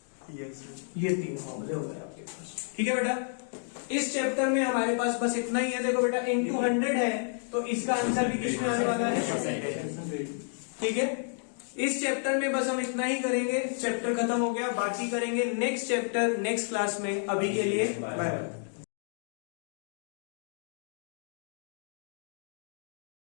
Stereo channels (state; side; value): silent; right; 57 dB below the other